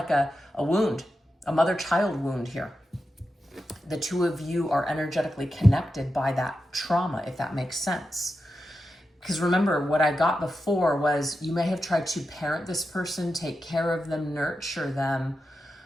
a wound, a mother-child wound here. The two of you are energetically connected by that trauma, if that makes sense. Because remember, what I got before was you may have tried to parent this person, take care of them, nurture them.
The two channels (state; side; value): normal; both; correlation 0.90